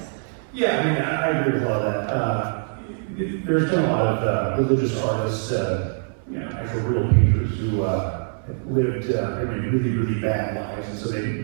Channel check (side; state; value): left; silent; 60 dB below the other